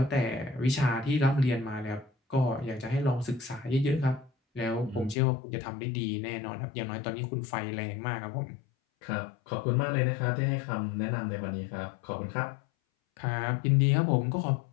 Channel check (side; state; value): right; drops out; at 5.2 s